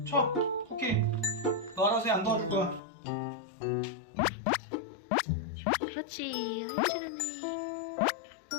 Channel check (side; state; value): right; drops out; at 2.8 s